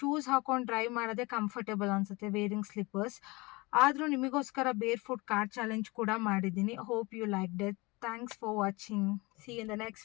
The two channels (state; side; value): quieter; right; 24.6 dB